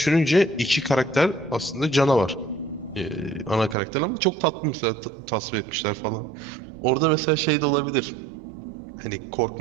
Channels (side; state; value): left; drops out; at 3.8 s